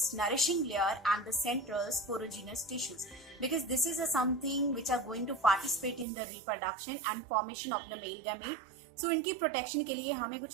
nourishing layer and the central sporogenous tissues, because this is something which are going to participate in the reproduction and formation of the male gamete. So इनकी protection के लिए हमें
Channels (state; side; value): drops out; left; at 6.1 s